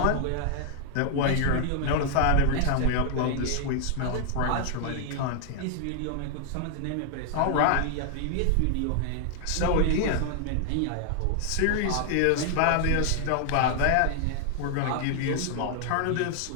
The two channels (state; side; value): different; both; correlation 0.00